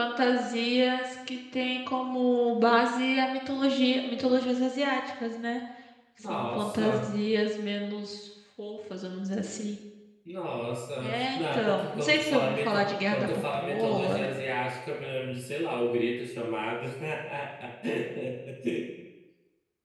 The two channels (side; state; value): both; identical; correlation 1.00